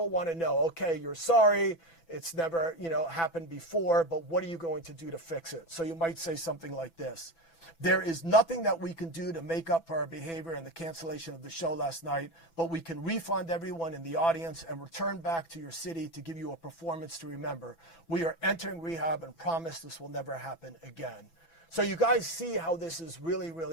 want to know, okay, you're sorry, it's never, happened before, but what are you going to do to fix it? So you might say something like this. There is nothing that we can do to make up for our behavior and the cancellation of the show last night, but we can refund everyone in the audience and return back to your city to give you a performance to remember. We are entering rehab and promise this will never happen again. So you guys see how this is really,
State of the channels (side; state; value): right; late; 6.0 ms